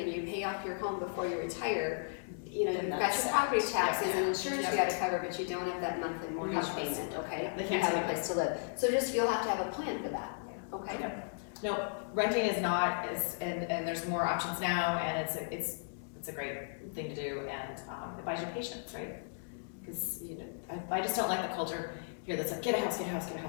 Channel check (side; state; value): right; silent; digital silence